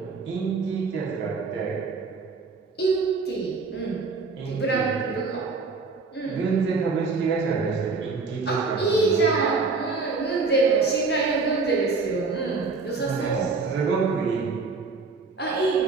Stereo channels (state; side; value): quieter; left; 4.3 dB